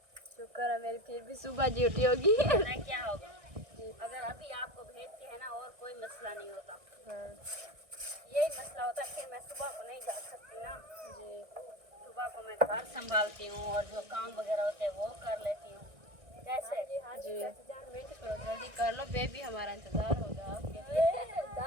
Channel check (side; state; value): left; late; 1.9 ms